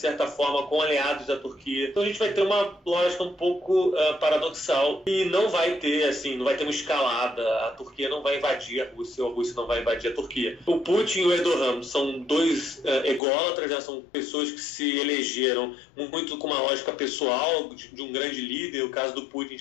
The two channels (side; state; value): right; drops out; at 13.2 s